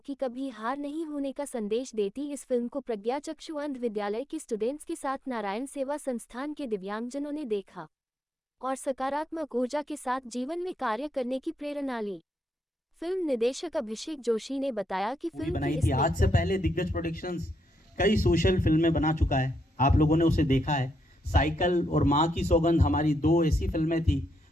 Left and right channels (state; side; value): normal; both; correlation 0.79